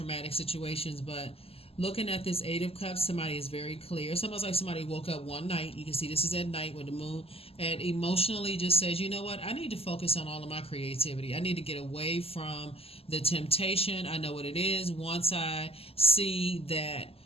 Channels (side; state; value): right; late; 0.28 ms